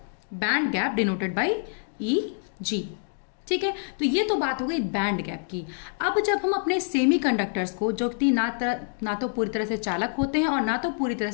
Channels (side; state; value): right; silent; 61 dB below the other